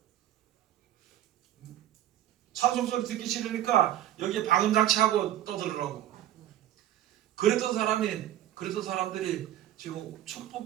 찬송 소리 듣기 싫으니까 여기에 방음장치하고 떠들으라고. 그랬던 사람들이 지금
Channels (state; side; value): quieter; left; 12.6 dB